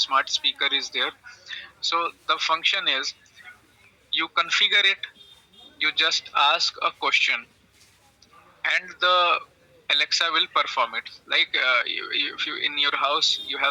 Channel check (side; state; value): both; identical; correlation 1.00